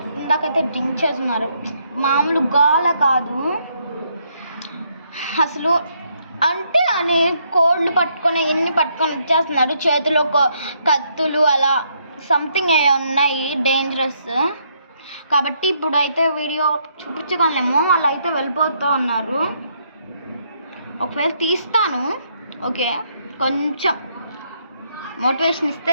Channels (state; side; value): inverted; both; correlation -0.73